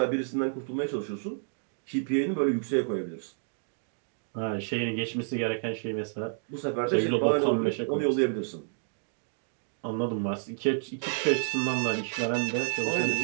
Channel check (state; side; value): silent; left; digital silence